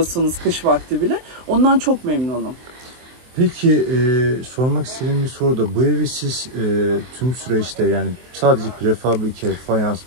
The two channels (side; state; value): left; late; 23 ms